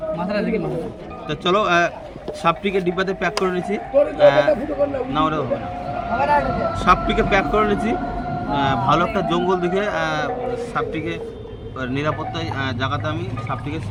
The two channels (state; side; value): identical; both; correlation 1.00